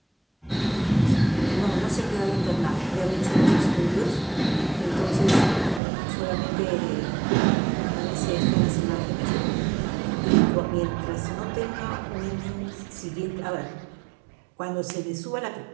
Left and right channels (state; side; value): drops out; left; at 5.8 s